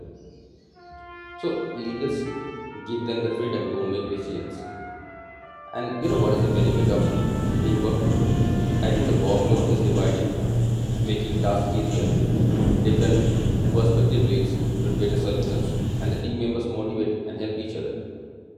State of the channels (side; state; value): both; identical; correlation 1.00